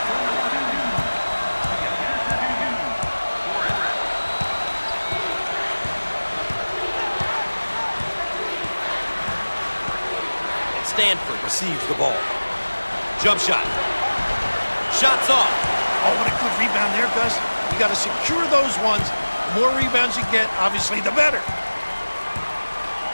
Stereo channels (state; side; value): inverted; both; correlation -1.00